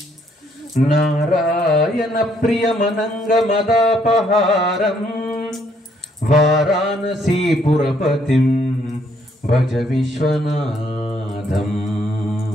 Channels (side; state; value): both; normal; correlation 0.69